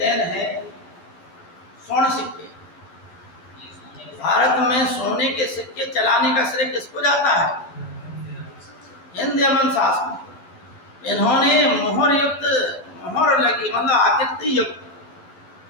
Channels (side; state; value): right; late; 12 ms